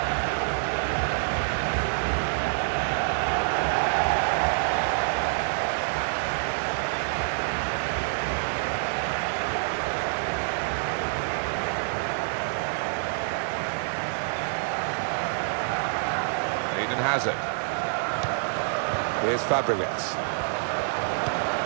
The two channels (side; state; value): left; silent; digital silence